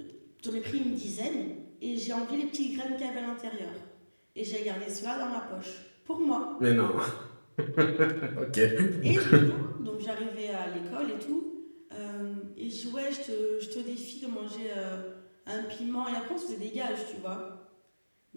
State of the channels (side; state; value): both; inverted; correlation -1.00